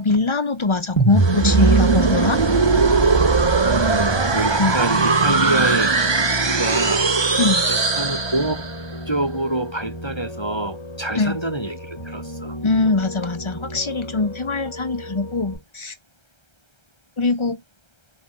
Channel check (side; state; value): right; late; 1.2 ms